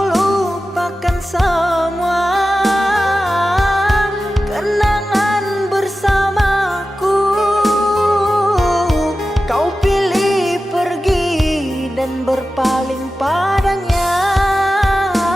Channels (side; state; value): both; normal; correlation 0.93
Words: lupakan semua kenangan bersamaku. berpaling padanya.